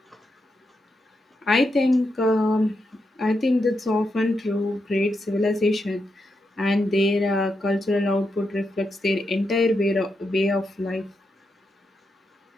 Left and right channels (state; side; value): normal; both; correlation 0.84